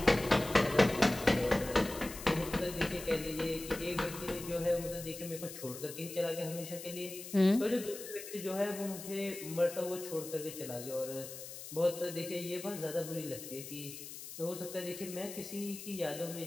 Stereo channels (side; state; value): left; noise; hiss, 11 dB below the sound